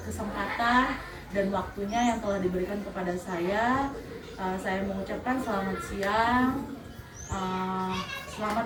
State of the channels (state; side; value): identical; both; correlation 1.00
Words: kesempatan dan waktunya yang telah diberikan kepada saya. Saya mengucapkan selamat siang.